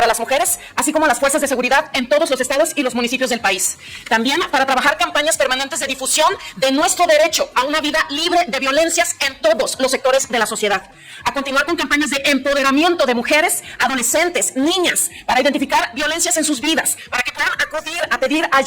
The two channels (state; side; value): identical; both; correlation 1.00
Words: las mujeres, así como las fuerzas de seguridad en todos los estados y los municipios del país. También para trabajar campañas permanentes de difusión de nuestro derecho a una vida libre de violencias en todos los sectores de la sociedad. A continuar con campañas de empoderamiento de mujeres, adolescentes, niñas, para identificar violencias en sus vidas, para que puedan acudir a pedir